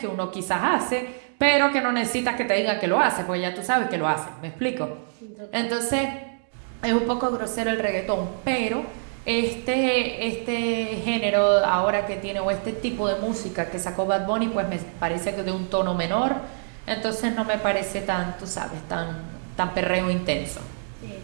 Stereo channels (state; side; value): silent; left; digital silence